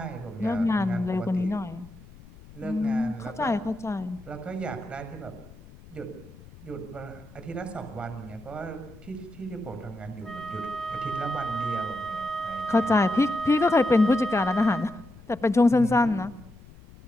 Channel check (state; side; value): noise; left; rumble, 20 dB below the sound